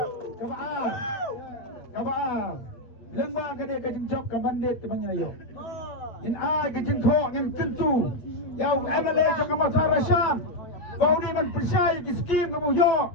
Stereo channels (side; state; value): right; late; 8.4 ms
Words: kabar lengba kade kajing job ka bandit ke bangayo in a kajing kho ngin kentu yau MLA ke mawthadraishan bau ni man persya ki skim ke yo